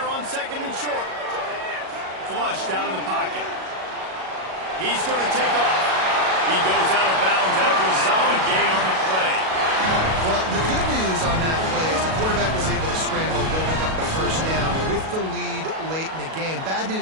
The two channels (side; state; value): left; late; 37 ms